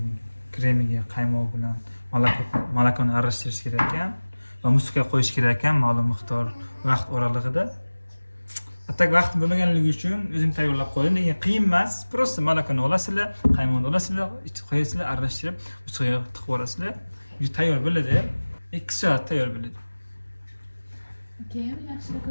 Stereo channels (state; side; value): inverted; both; correlation -1.00